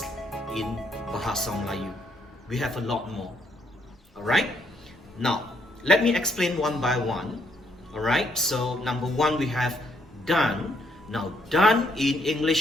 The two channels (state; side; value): normal; both; correlation 0.72